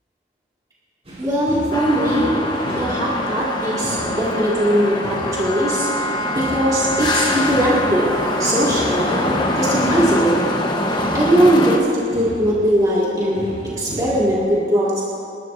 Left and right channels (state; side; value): normal; both; correlation 0.55